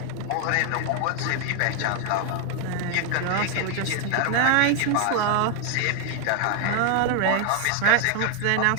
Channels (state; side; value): different; both; correlation 0.01